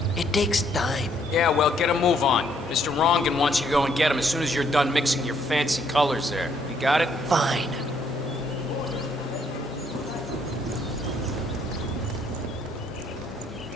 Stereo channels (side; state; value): both; normal; correlation 0.69